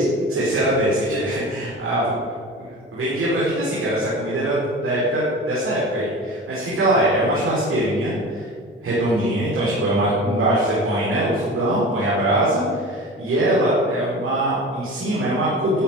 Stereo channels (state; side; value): normal; both; correlation 0.34